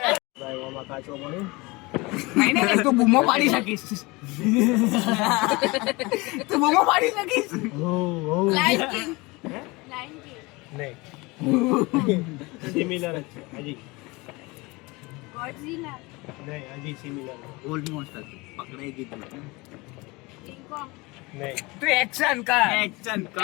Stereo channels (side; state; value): right; quieter; 24.2 dB